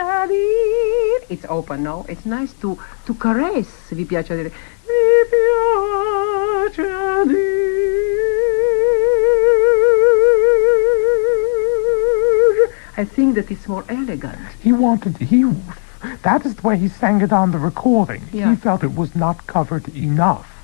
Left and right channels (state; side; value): silent; right; digital silence